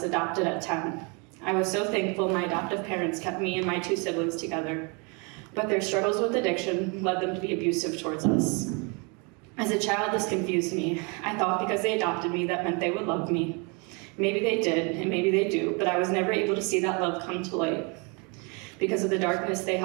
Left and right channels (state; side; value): quieter; left; 32.3 dB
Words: adopted at 10. I was so thankful my adoptive parents kept me and my two siblings together, but their struggles with addiction led them to be abusive towards us. As a child, this confused me. I thought because they adopted me, that meant they would love me. Maybe they did, and maybe they do, but I was never able to see that love come to light because of the darkness they